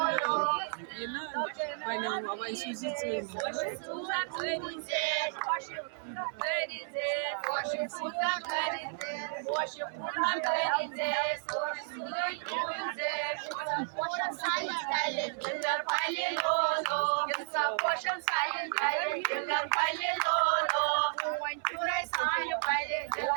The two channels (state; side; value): silent; left; 56 dB below the other